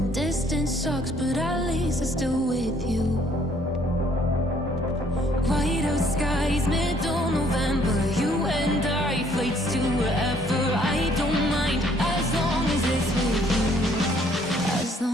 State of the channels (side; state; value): both; normal; correlation 0.63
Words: Distance sucks, but at least I'm still with you.